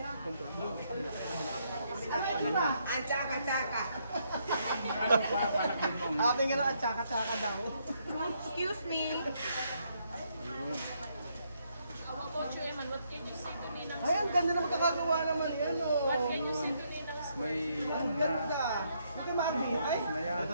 Control. Ang tsaka-tsaka. Ano pa, panagin mong... Aking nga ang tsaka-tsaka daw. Excuse me. How about you, Eman? What can you say to Ninang? Ay, ang ganda na magkakagawa naman yan, oh. What can you say to Ninang? May, Ang ganda. Ito yung Marvin. Ay, na yan. ito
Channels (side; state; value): both; inverted; correlation -0.74